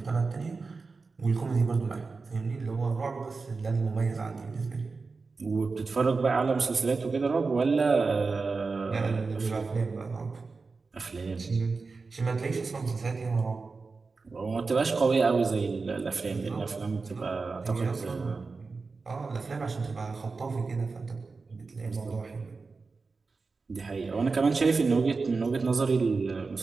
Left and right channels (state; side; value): quieter; left; 4.3 dB